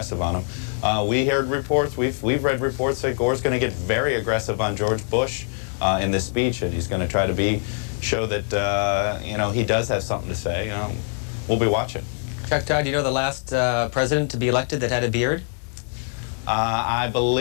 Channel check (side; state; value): right; silent; 57 dB below the other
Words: on him. We heard reports, we've read reports that Gore's going to get very aggressive on George Bush in this speech, and he's going to try to show that he does have something to say. We'll be watching. Chuck Todd, you know the last president to be elected that had a beard? I